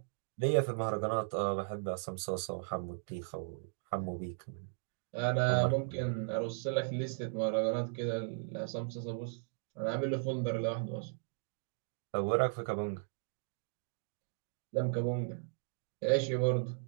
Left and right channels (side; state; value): left; silent; digital silence